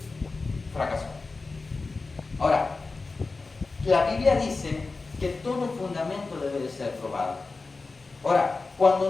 fracasó. Ahora, la Biblia dice que todo fundamento debe de ser probado. Ahora,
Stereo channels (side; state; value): right; quieter; 3.9 dB